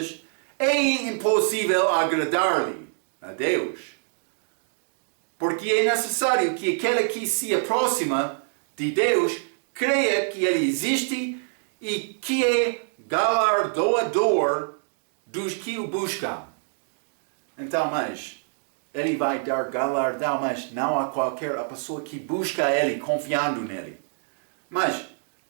é impossível agradar-lhe a Deus. Porque é necessário que aquele que se aproxima de Deus creia que Ele existe e que é galardoador dos que o buscam. Então, mas Ele vai dar galardão, mas não a qualquer pessoa que busca Ele, confiando nele. Mas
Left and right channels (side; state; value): left; silent; digital silence